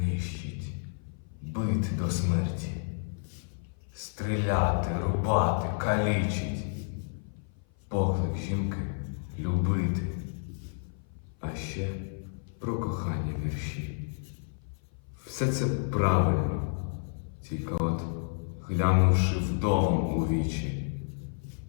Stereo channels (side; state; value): right; silent; 55 dB below the other